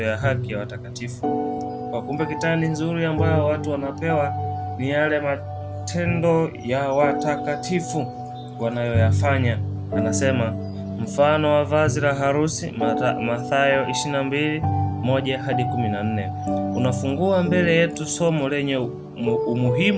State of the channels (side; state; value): both; identical; correlation 1.00